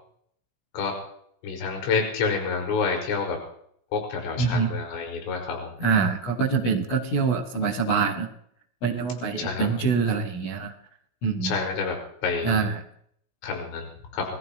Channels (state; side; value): late; right; 16 ms